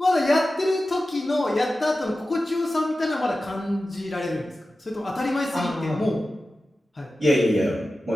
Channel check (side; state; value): both; normal; correlation 0.94